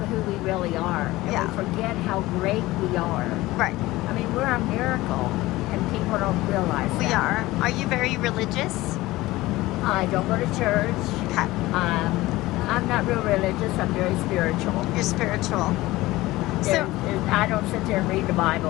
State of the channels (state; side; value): quieter; right; 18.5 dB